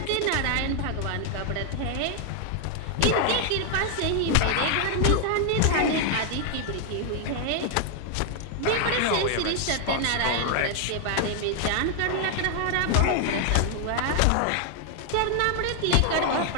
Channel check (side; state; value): both; different; correlation 0.00